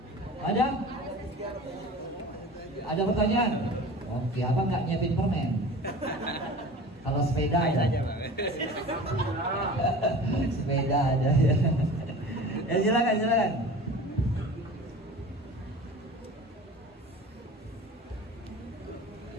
Ada? Ada pertanyaan? Oke, abang nggak nyiapin permen. Kalau sepeda ada. Sepeda ada ya. Ya silakan, silakan.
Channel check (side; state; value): both; normal; correlation 0.39